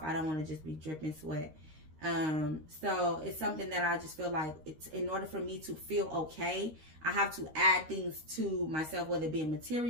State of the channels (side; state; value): left; late; 13 ms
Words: I don't want to just be dripping sweat. So it's something that I just feel like it's, in order for me to feel okay, I have to add things to myself, whether it be